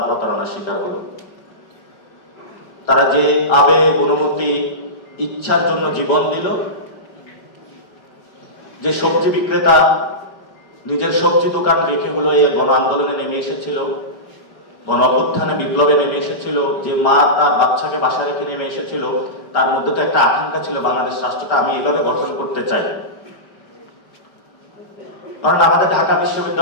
প্রতারণার শিকার হলো। তারা যে আবেগ, অনুভূতি, ইচ্ছার জন্য জীবন দিল, যে সবজি বিক্রেতা নিজের সবজি দোকান রেখে হলো এই গণ আন্দোলনে নেমে এসেছিল, গণ অভ্যুত্থানে বিপ্লবে নেমে এসেছিল, যে মা তার বাচ্চাকে বাসা রেখে নেমে এসেছিল, তার মধ্যে তো একটা আকাঙ্ক্ষা ছিল বাংলাদেশ রাষ্ট্রটা আমি এভাবে গঠন করতে চাই। কারণ আমাদের ঢাকা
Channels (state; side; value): late; right; 5.0 ms